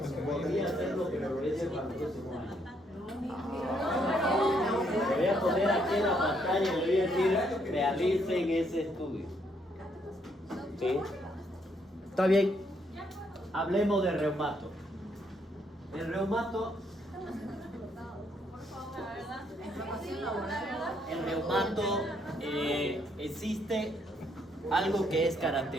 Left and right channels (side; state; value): both; normal; correlation 0.72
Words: Podría hacerlo, pero lo voy a hacer para el próximo año. Le voy a poner aquí en la pantalla y le voy a decir, realicen ese estudio. ¿Sí? Está bien. Hablemos de reumato. El reumato. El reumato existe algo que es